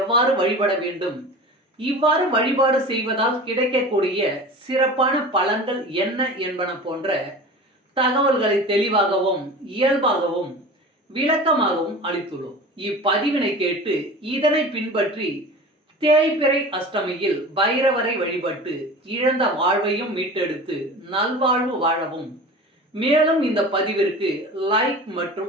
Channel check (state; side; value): normal; both; correlation 0.36